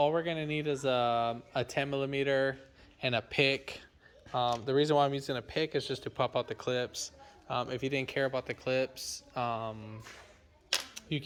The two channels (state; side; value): identical; both; correlation 1.00